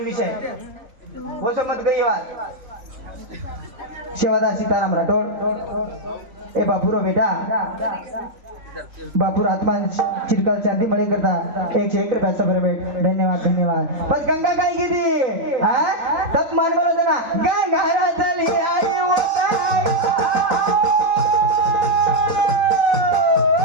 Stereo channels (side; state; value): left; late; 3.9 ms